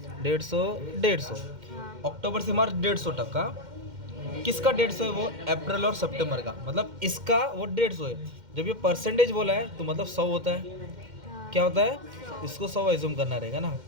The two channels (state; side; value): late; left; 2.1 ms